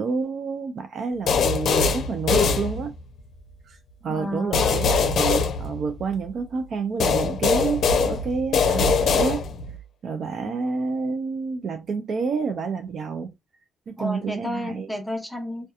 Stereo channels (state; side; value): normal; both; correlation 0.66